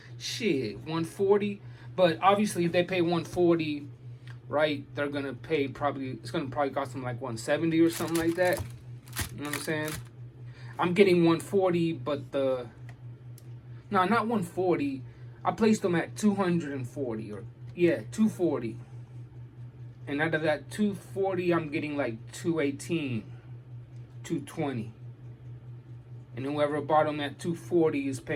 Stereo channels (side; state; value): both; identical; correlation 1.00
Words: shit, 140. But obviously if they pay 140, right, they're going to pay it's going to probably cost them like 170 or something like that. You know what I'm saying? I'm getting 140, but no, not 140. I placed them at 240 or, yeah, 240. And out of that 240, I'm getting like 218, 220. And whoever bought them at 240 is